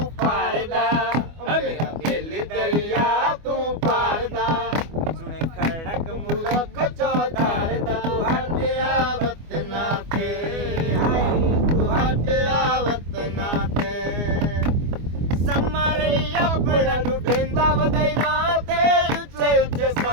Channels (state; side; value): late; left; 24 ms